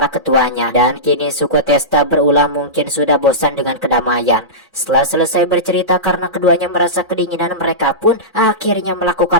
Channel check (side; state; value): both; normal; correlation -0.17